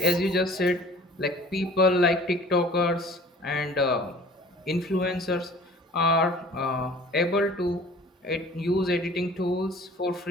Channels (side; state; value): both; normal; correlation 0.47